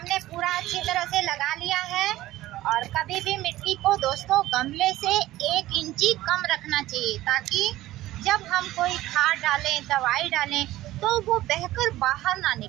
पूरा अच्छी तरह से लगा लिया है और कभी भी मिट्टी को दोस्तों गमले से 1 इंची कम रखना चाहिए, ताकि जब हम कोई खाद डालें, दवाई डालें तो वो बहकर बाहर ना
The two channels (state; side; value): quieter; left; 15.9 dB